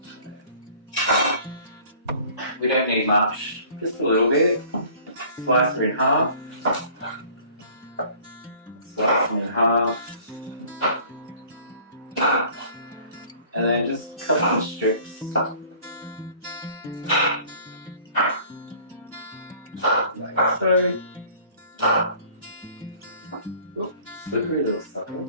We don't need much, just a little bit. Slice her in half. Slice them in half. And then just cut some strips. Like so. Ooh, slippery little sucker.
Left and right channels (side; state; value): both; inverted; correlation -0.51